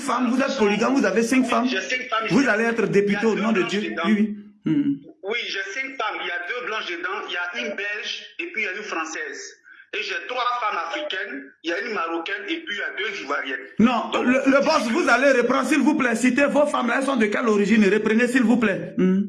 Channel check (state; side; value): identical; both; correlation 1.00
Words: vous êtes polygame, vous avez 5 femmes. J'ai 5 femmes. Vous allez être député au nom de Dieu. Oui, j'ai 5 femmes. Il y a 2 blanches dedans, il y a une belge et puis il y a une française. Et j'ai 3 femmes africaines, il y a une marocaine et puis il y a 2 ivoiriennes. Non, le boss, vous allez reprendre, s'il vous plaît. Citez vos femmes, elles sont de quelle origine? Reprenez, s'il vous plaît.